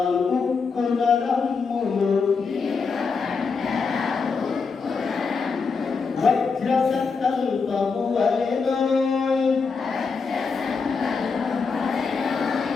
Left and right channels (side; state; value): right; quieter; 5.0 dB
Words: ఉక్కున రమ్ములు వజ్ర సంకల్పము వలెనోయ్